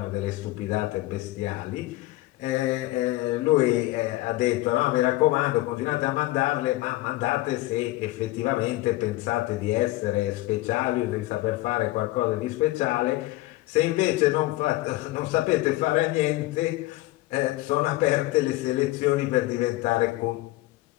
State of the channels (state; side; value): quieter; right; 18.3 dB